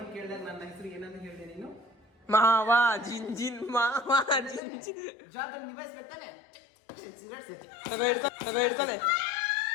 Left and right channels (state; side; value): drops out; right; at 4.6 s